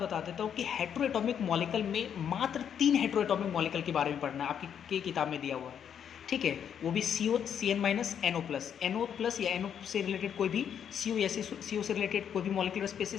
देता हूँ कि हेट्रोएटॉमिक मॉलिक्यूल में मात्र 3 हेट्रोएटॉमिक मॉलिक्यूल के बारे में पढ़ना है, आपकी किताब में दिया हुआ है। ठीक है, वो भी CO, CN-NO+, या NO से रिलेटेड कोई भी CO या CO से रिलेटेड कोई भी मॉलिक्यूलर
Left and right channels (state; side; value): quieter; right; 8.5 dB